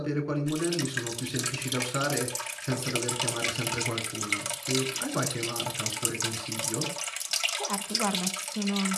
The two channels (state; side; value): identical; both; correlation 1.00